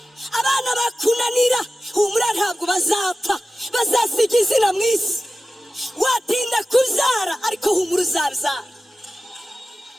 Abana bakunanira humura ntabwo bazapfa, bazasiga izina mu isi. Watinda kubyara ariko humura uzabyara.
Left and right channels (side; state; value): both; normal; correlation 0.94